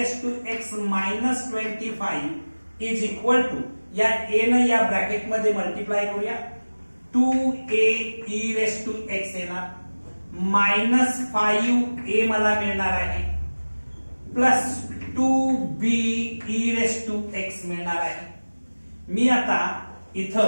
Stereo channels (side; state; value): both; inverted; correlation -1.00